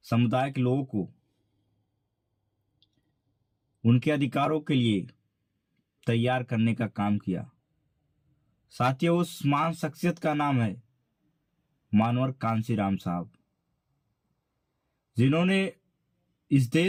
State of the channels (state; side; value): identical; both; correlation 1.00